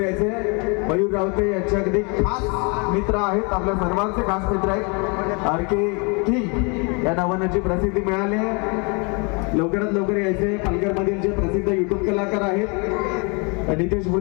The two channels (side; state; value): right; quieter; 32.5 dB